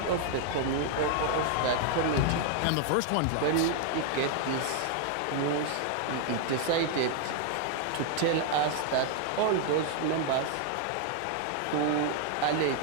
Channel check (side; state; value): both; different; correlation 0.00